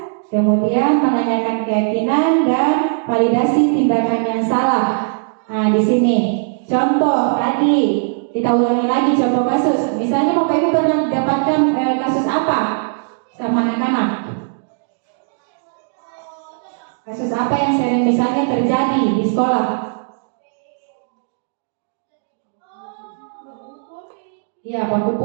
kemudian menanyakan keyakinan, dan validasi tindakan yang salah. Nah, di sini contoh tadi kita ulangi lagi contoh kasus. Misalnya Bapak Ibu pernah mendapatkan kasus apa sama anak-anak? Kasus apa yang sering misalnya terjadi di sekolah? Ya, baku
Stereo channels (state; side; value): silent; left; digital silence